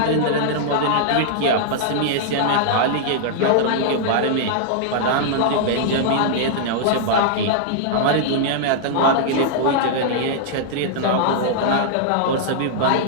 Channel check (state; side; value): different; both; correlation -0.01